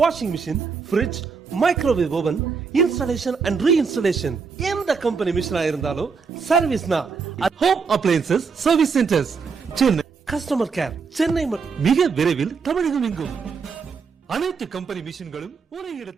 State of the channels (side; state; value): left; quieter; 5.3 dB